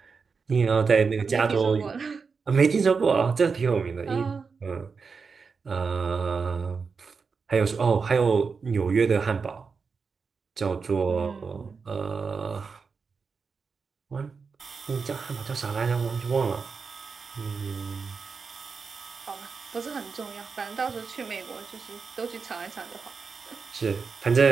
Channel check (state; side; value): quieter; left; 5.1 dB